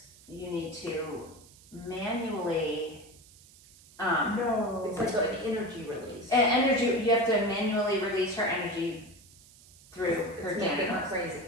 you need to manually." No. It's like an energy release. And energy, you have to manually release her energy through her It's making her genitals. crazy.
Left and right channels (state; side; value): noise; right; hiss, 24 dB below the sound